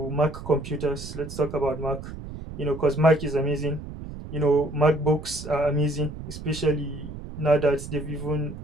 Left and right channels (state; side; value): noise; right; rumble, 11 dB below the sound